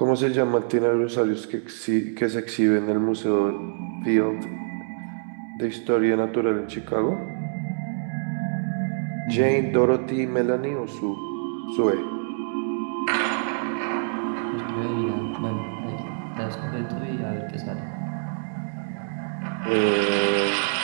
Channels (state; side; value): silent; left; digital silence